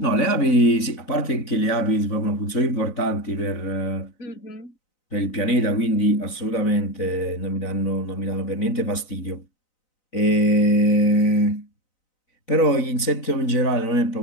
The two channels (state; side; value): late; right; 3.9 ms